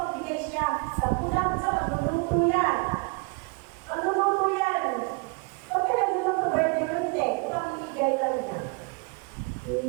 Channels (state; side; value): quieter; left; 33.0 dB